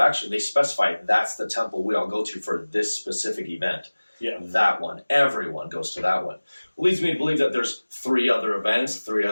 they specify that's the temple we all go to for this specific event. Yeah. That one. Everyone goes to that one. Leads me to believe that there's three other events, three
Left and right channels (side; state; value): both; inverted; correlation -1.00